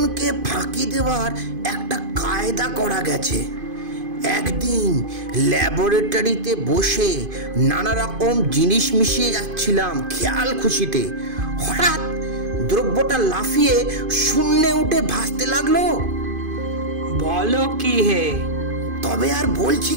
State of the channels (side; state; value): left; late; 2.5 ms